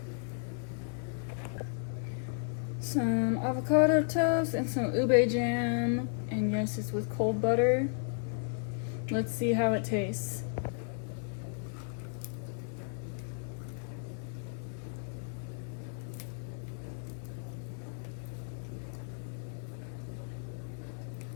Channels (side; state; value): right; silent; 55 dB below the other